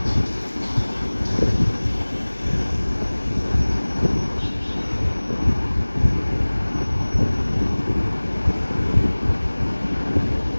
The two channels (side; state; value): both; inverted; correlation -1.00